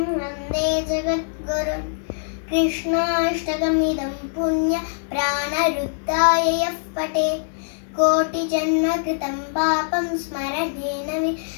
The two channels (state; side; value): silent; right; digital silence